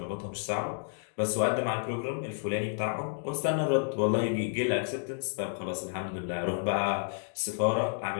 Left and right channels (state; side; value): silent; right; digital silence